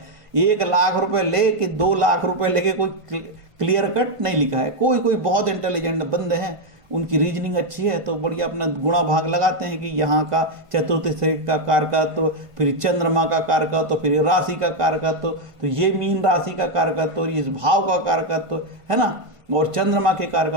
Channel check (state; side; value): late; left; 1.5 ms